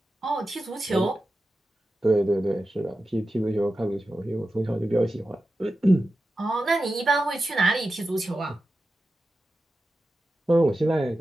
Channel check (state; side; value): normal; both; correlation 0.92